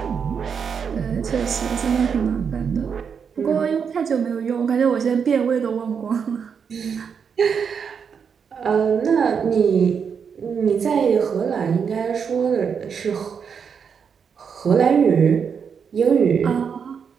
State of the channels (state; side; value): quieter; left; 6.7 dB